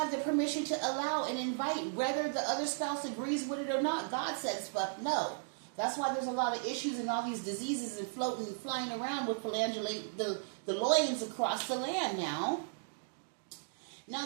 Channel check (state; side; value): silent; left; digital silence